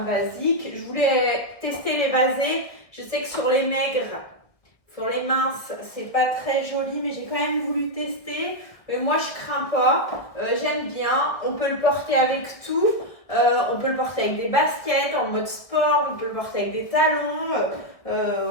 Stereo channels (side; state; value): right; late; 1.4 ms